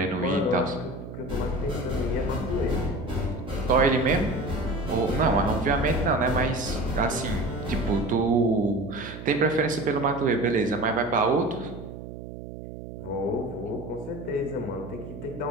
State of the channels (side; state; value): right; noise; hum, 11 dB below the sound